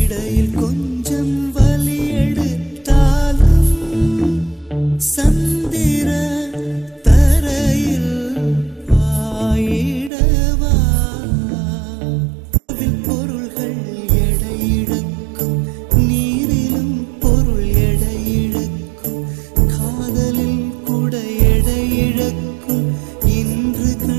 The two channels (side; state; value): left; drops out; at 10.1 s